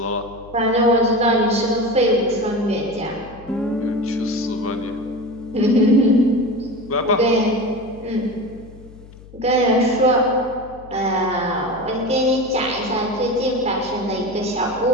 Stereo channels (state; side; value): noise; left; hum, 20 dB below the sound